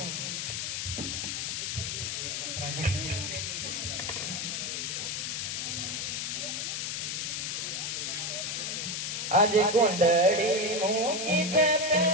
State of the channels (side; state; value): left; noise; hiss, 2 dB below the sound